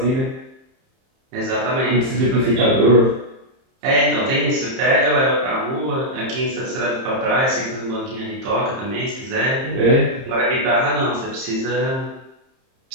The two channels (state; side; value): late; left; 30 ms